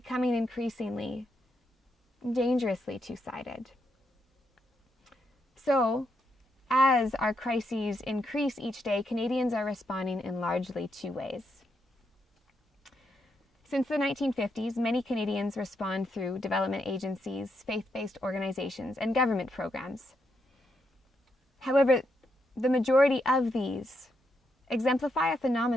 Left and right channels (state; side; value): normal; both; correlation 0.80